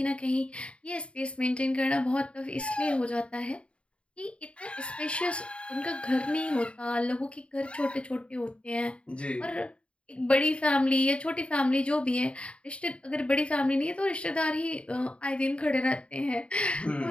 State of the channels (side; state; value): right; late; 0.059 ms